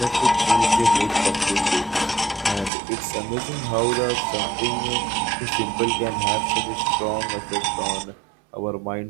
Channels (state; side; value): drops out; left; at 2.7 s